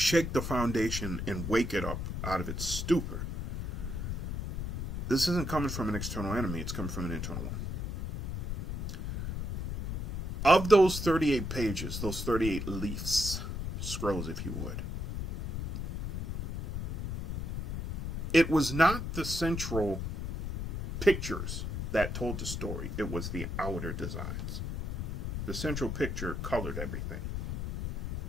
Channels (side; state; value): left; noise; rumble, 3 dB below the sound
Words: the foundation and wake it up out of its stupor. This isn't coming from an external enemy, it's coming from an internal one. Of those 38 pages, those 38 leaves, scrolls if you would, it was not the central pictures that told the story. It was the outer designs. The central picture colored everything.